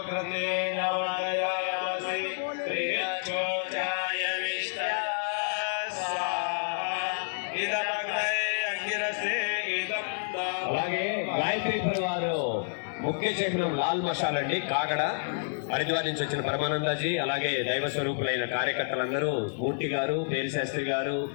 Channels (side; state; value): right; silent; digital silence